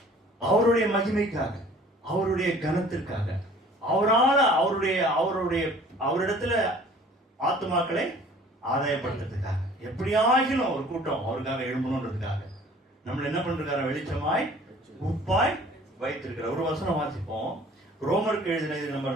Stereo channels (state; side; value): normal; both; correlation 0.51